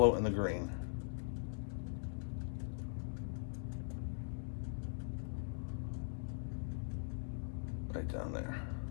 and the green. Right down there.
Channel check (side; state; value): right; silent; digital silence